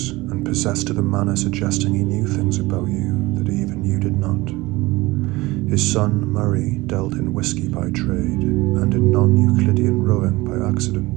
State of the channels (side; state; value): left; quieter; 20.7 dB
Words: and possessed of a manner suggesting he knew things about you that even you did not. His son Murray dealt in whiskey by trade and in non-Euclidean rowing by